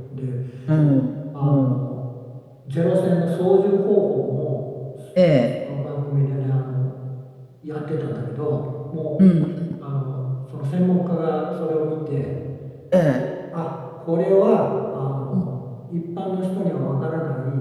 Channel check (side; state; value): both; identical; correlation 1.00